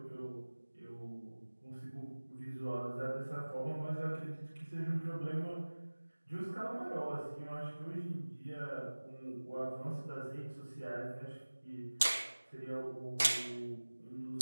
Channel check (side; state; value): both; inverted; correlation -1.00